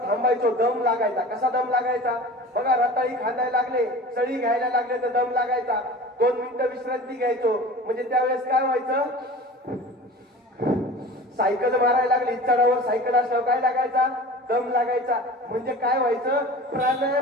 थांबायचो, दम लागायचा. कसा दम लागायचा? बघा, रताळी खांदायला लागले, सळी घ्यायला लागले तर दम लागायचा. 2 मिनिटं विश्रांती घ्यायचो. म्हणजे त्यावेळेस काय व्हायचं? सायकल मारायला लागली, चढावर सायकल असल्यावर काय लागायचा? दम लागायचा. म्हणजे काय व्हायचं?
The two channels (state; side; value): normal; both; correlation 0.38